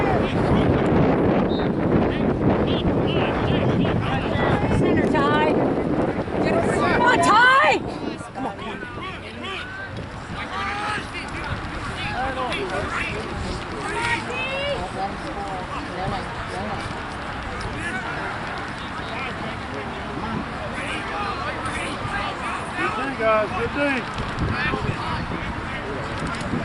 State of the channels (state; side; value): identical; both; correlation 1.00